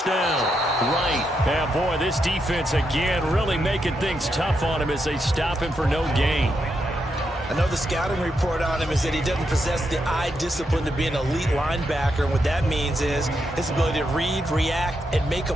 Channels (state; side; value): normal; both; correlation 0.82